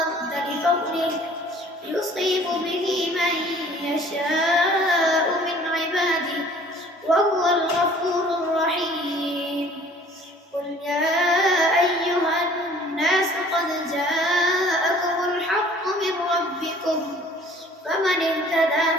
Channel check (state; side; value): normal; both; correlation 0.52